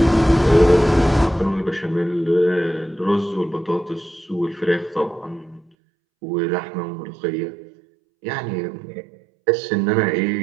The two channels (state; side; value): drops out; left; at 5.7 s